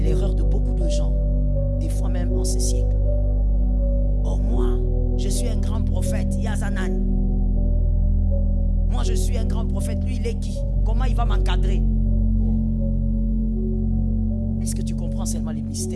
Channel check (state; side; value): identical; both; correlation 1.00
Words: l'erreur de beaucoup de gens. Des fois même en ce siècle. Oh, moi, je suis un grand prophète. Yazanan. Moi, je suis un grand prophète. Lui, il est qui? Comment il va m'encadrer? Est-ce que tu comprends seulement les